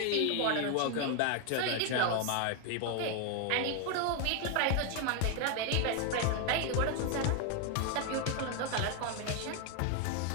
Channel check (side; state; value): both; different; correlation 0.01